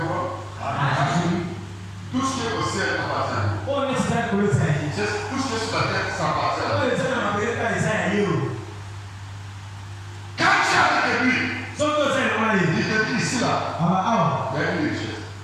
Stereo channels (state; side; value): identical; both; correlation 1.00